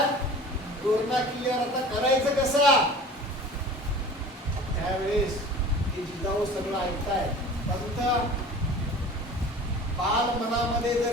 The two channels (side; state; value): both; normal; correlation 0.41